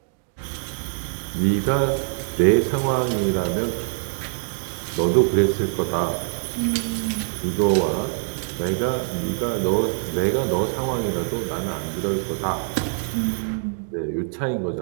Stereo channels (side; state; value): left; silent; 57 dB below the other